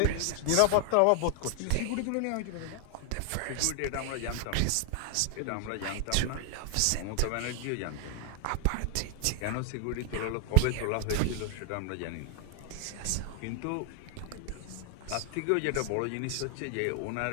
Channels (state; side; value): different; both; correlation 0.00